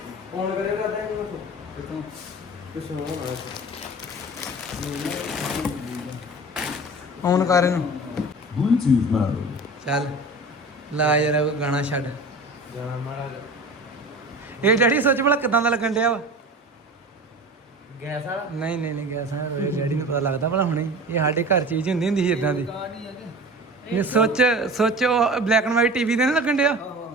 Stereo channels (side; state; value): both; normal; correlation 0.36